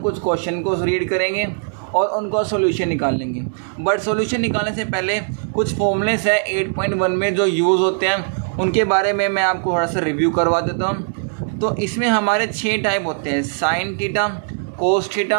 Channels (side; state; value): left; silent; digital silence